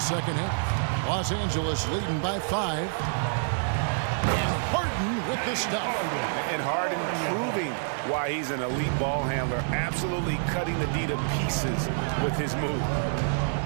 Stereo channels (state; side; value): silent; left; 60 dB below the other